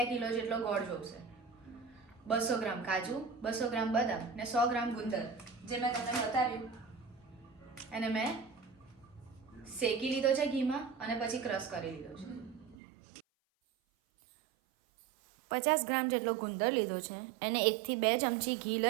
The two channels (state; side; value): drops out; left; at 12.8 s